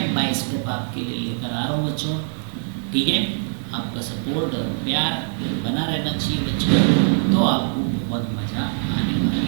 बाय स्टेप आपके लिए लेकर आ रहा हूँ बच्चों। ठीक है, आपका सपोर्ट और प्यार बना रहना चाहिए बच्चों, तो आपको बहुत मज़ा आने वाली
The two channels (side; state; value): left; silent; 57 dB below the other